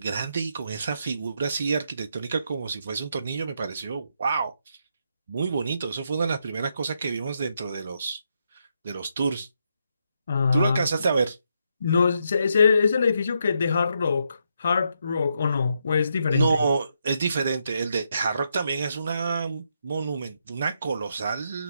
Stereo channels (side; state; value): both; inverted; correlation -0.79